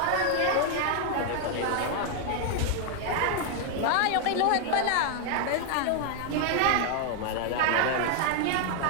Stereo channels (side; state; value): both; different; correlation 0.00